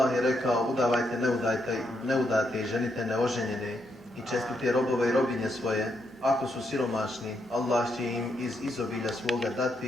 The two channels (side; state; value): both; normal; correlation 0.79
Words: je rekao: udavajte neudate i ženite neoženjene i čestite robove i robinje svoje. Ako su siromašni, Allah će im iz izobilja svoga